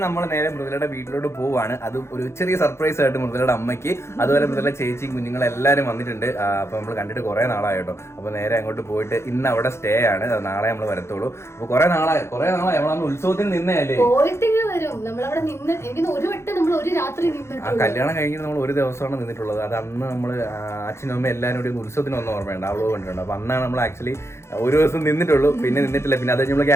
നമ്മൾ നേരെ മൃദുലയുടെ വീട്ടിലോട്ട് പോവാണ്. അതും ഒരു ചെറിയ സർപ്രൈസ് ആയിട്ട് മൃദുലയുടെ അമ്മയ്ക്ക്, അതുപോലെ മൃദുല ചേച്ചിയും കുഞ്ഞുങ്ങളെല്ലാവരും വന്നിട്ടുണ്ട്. അപ്പൊ നമ്മൾ കണ്ടിട്ട് കുറെ നാളായി കേട്ടോ. അപ്പൊ നേരെ അങ്ങോട്ട് പോയിട്ട് ഇന്ന് അവിടെ സ്റ്റേ ആണ്, നാളെ നമ്മൾ വരത്തുള്ളൂ. അപ്പൊ കുറെ നാളായി നമ്മളന്ന് ഉത്സവത്തിന് നിന്നല്ലേ. ആ കല്യാണം കഴിഞ്ഞിട്ട് നമ്മൾ ഒരു ദിവസമാണ് നിന്നിട്ടുള്ളത്. അത് അന്ന് നമ്മൾ അച്ഛനും അമ്മ എല്ലാവരും കൂടി ഉത്സവത്തിന് വന്ന ഓർമ്മയുണ്ട്, അവളോ കണ്ടിട്ടുണ്ട്. അപ്പൊ അന്നാണ് നമ്മൾ ആക്ച്വലി ഒരു ദിവസം നിന്നിട്ടുള്ളൂ, പിന്നെ നിന്നിട്ടില്ല. പിന്നെ അത് നമ്മൾ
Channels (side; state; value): right; late; 0.13 ms